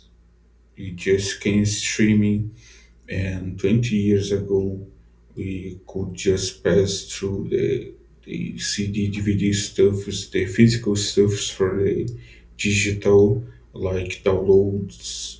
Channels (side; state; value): both; identical; correlation 1.00